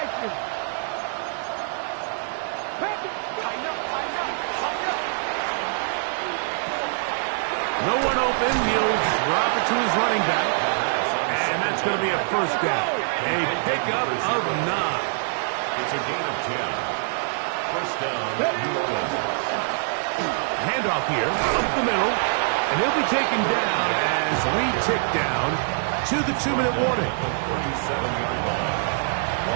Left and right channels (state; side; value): silent; left; digital silence